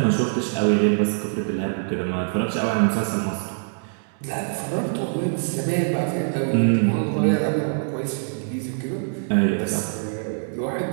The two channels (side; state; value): left; silent; digital silence